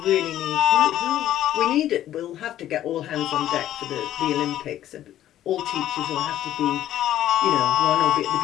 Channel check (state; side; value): quieter; right; 12.4 dB